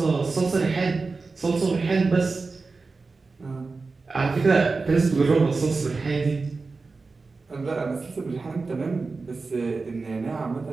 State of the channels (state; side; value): quieter; left; 4.1 dB